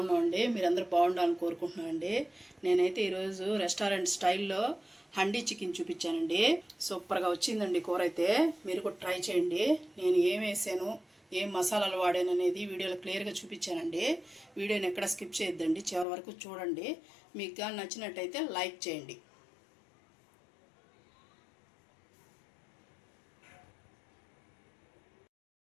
మీరందరూ బాగుండాలని కోరుకుంటున్నామండి. నేనైతే ఈరోజు రెస్టారెంట్ స్టైల్లో హండీ చికెన్ చూపించానండి. సూపర్గా వచ్చిందండి కూర అయితే. మీరు కూడా ట్రై చేయండి. నేను ఏం వేసాను, ఏం మసాలాలు వాడాను అనేది వీడియోలో క్లియర్గా చూపించానండి. వీడియోని ఎక్కడ స్కిప్ చేయొద్దండి, చివరి వరకు చూడండి. మీకు కానీ నచ్చినట్టయితే లైక్ చేయండి.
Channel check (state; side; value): drops out; right; at 16.1 s